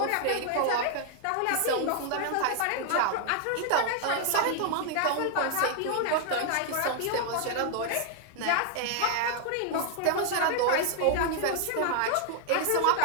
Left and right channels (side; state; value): both; different; correlation 0.00